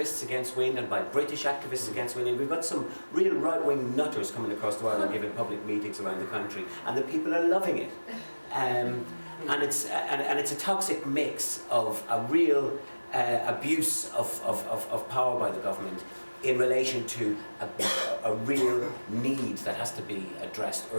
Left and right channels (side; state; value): both; inverted; correlation -1.00